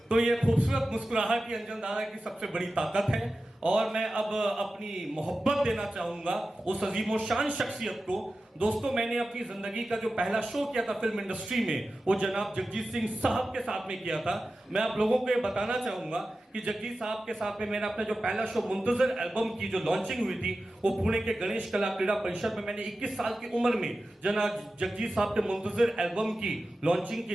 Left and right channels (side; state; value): both; normal; correlation 0.94